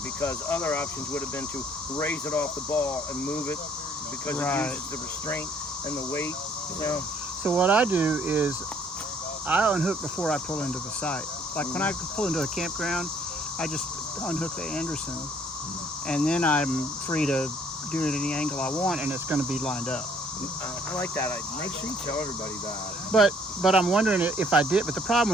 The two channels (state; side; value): normal; both; correlation 0.62